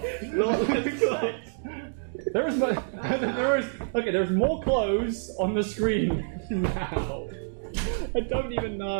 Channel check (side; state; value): left; silent; digital silence